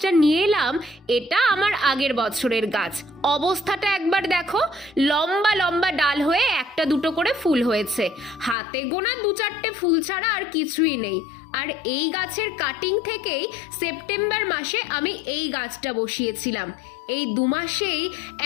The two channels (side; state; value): right; drops out; at 8.6 s